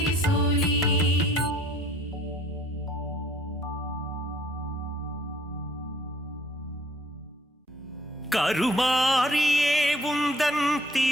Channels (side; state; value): both; normal; correlation 0.58